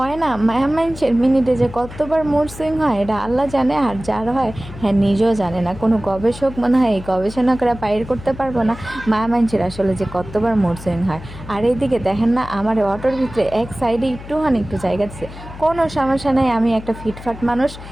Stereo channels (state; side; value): noise; left; hum, 14 dB below the sound